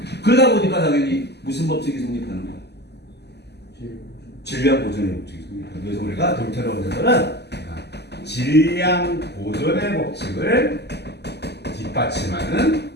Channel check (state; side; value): late; right; 0.49 ms